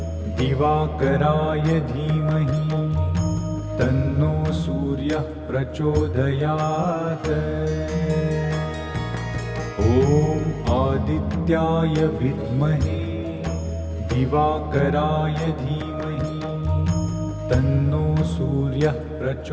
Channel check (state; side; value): identical; both; correlation 1.00